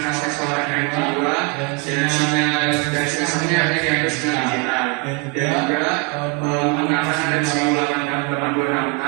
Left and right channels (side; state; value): left; quieter; 29.2 dB